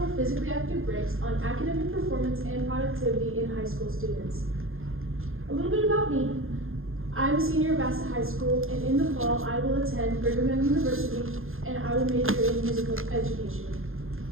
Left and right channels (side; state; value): left; late; 0.60 ms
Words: physically active breaks on academic performance and productivity in high school students. A little bit about me. I'm a senior at Bassett High School, and in the fall I will attend Brigham Young University, and I will major in musical education.